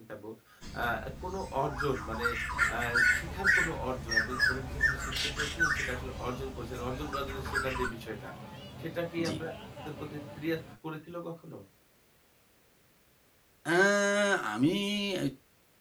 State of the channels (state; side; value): identical; both; correlation 1.00